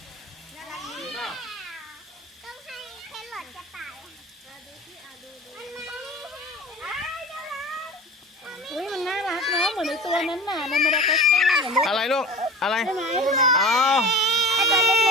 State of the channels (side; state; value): both; normal; correlation 0.34